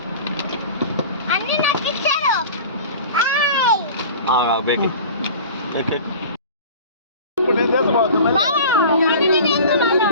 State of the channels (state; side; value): inverted; both; correlation -0.38